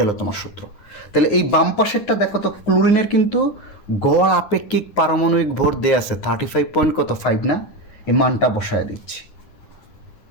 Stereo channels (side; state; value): right; late; 9.6 ms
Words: হলো তোমার সূত্র। তাহলে এই বাম পাশেরটা দেখো তো, ক্লোরিনের কিন্তু গড় আপেক্ষিক পারমাণবিক ভর দেয়া আছে 35.5 না, এই মানটা বসায় দিচ্ছি।